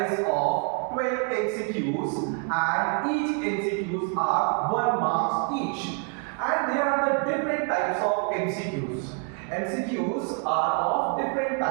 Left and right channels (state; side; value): quieter; left; 39.3 dB